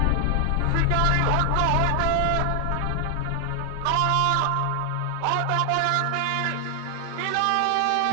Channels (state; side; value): different; both; correlation 0.00